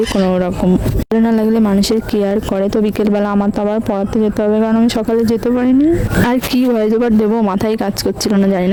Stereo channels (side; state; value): both; identical; correlation 1.00